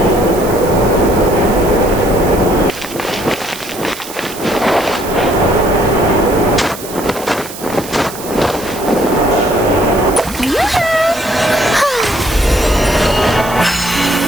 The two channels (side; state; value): right; noise; hiss, 13 dB below the sound